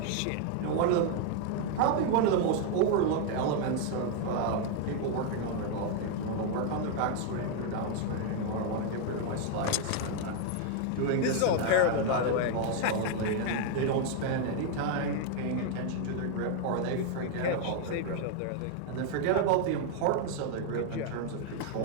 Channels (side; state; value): both; different; correlation 0.00